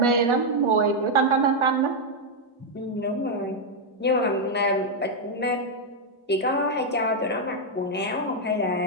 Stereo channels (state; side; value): normal; both; correlation -0.01